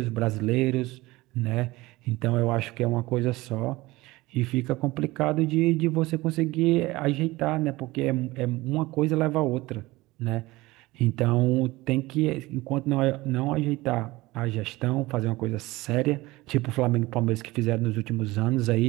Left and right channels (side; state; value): left; quieter; 20.2 dB